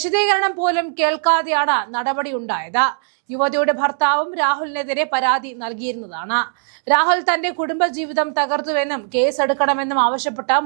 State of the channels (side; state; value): left; silent; digital silence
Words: പോലും കേൾക്കാതെയാണ് നടപടിയുണ്ടായത്. യുവതിയുടെ ഭർത്താവും രാഹുലിനെതിരെ പരാതി നൽകിയിരുന്നതാണ്. രാഹുൽ തന്റെ കുടുംബജീവിതം തകർത്തുവെന്നും കേസെടുക്കണമെന്നും ആവശ്യപ്പെട്ട